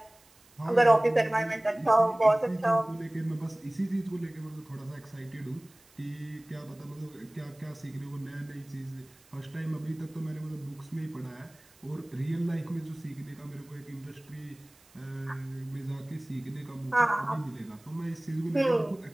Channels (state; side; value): noise; right; hiss, 28 dB below the sound